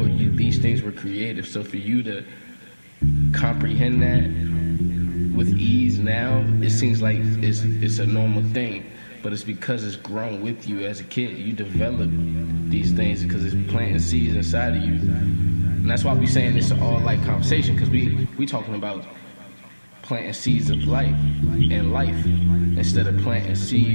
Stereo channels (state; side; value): inverted; both; correlation -1.00